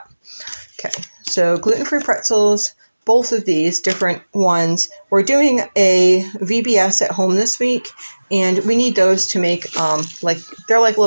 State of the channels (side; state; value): both; inverted; correlation -1.00